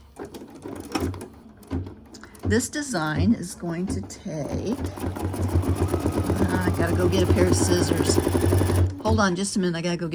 This design is going to take, I gotta go get a pair of scissors. Hold on just a minute, I gotta go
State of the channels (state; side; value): identical; both; correlation 1.00